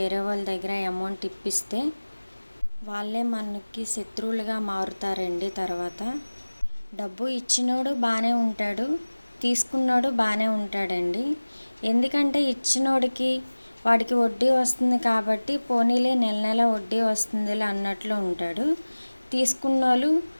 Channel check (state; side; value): inverted; both; correlation -1.00